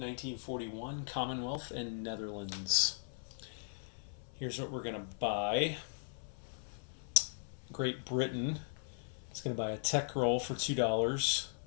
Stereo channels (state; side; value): silent; right; 52 dB below the other